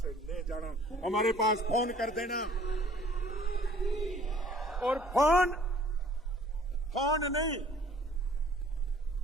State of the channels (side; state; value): both; normal; correlation 0.55